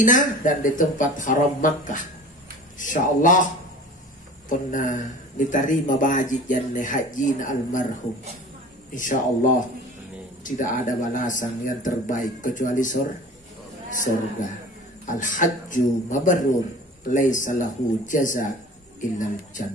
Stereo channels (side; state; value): both; normal; correlation 0.41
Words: dan di tempat haram Makkah. Insyaallah pernah diterima baji janne haji almarhum. Insyaallah tidak ada balasan yang terbaik kecuali surga. Al-hajju mabrur laisa lahu jaza illa